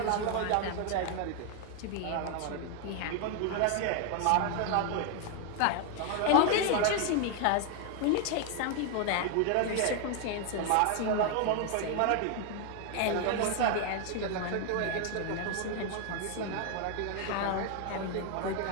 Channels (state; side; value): different; both; correlation 0.00